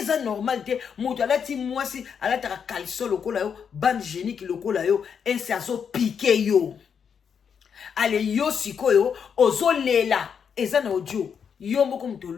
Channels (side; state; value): right; quieter; 7.0 dB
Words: normal te mutu alati mwasi alataka caleçon lokola yo bande génique lokola yo et c'est azo piquer yo ale yo sikoyo ozo lela eza na audio yo moko mtu